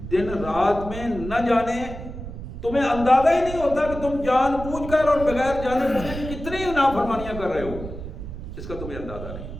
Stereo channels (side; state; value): right; noise; rumble, 10 dB below the sound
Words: دن رات میں نہ جانے تمہیں اندازہ ہی نہیں ہوتا کہ تم جان بوجھ کر اور بغیر جانے بوجھے کتنی نافرمانیاں کر رہے ہو، اس کا تمہیں اندازہ